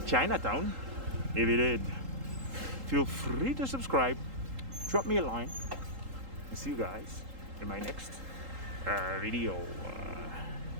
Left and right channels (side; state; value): left; late; 3.8 ms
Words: Chinatown. If you did, feel free to subscribe, drop me a line, and see you guys in my next video.